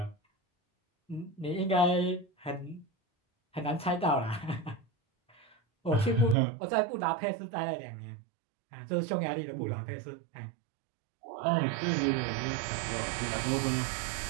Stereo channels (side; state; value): left; drops out; at 6.4 s